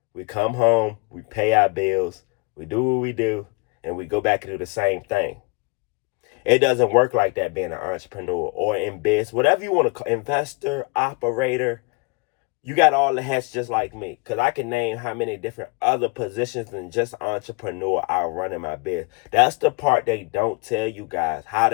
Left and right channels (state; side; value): quieter; right; 28.8 dB